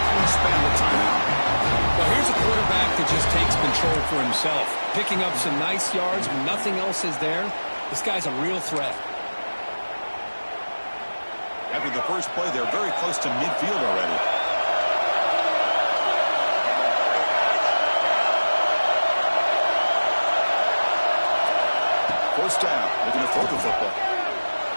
spend the timeout. Well, here's a quarterback that just takes control for himself, picking up some nice yards when nothing else is there. This guy's a real threat. After the first play, they're very close to midfield already. First down, looking to throw the football.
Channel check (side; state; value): both; inverted; correlation -1.00